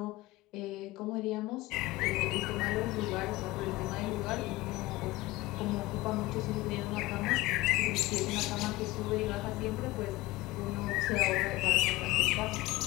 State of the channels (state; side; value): quieter; right; 19.4 dB